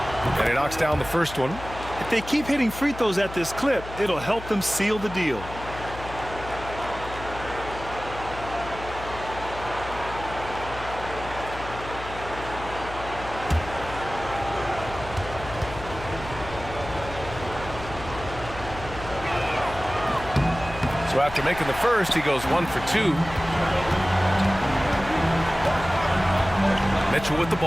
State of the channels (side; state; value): left; noise; hum, 12 dB below the sound